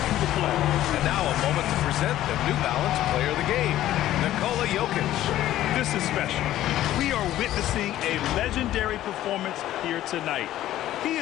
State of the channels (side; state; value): right; quieter; 13.6 dB